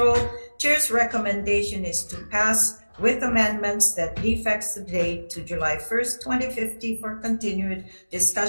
Chair's recommendation is to pass with amendments that defects the date to July 1st, 2050 for continued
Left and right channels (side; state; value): both; inverted; correlation -1.00